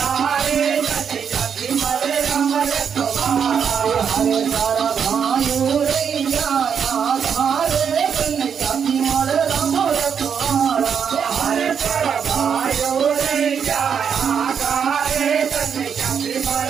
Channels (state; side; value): quieter; left; 7.3 dB